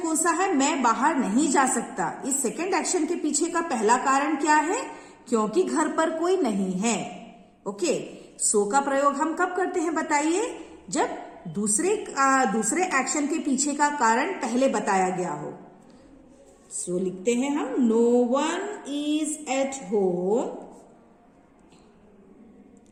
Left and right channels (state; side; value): identical; both; correlation 1.00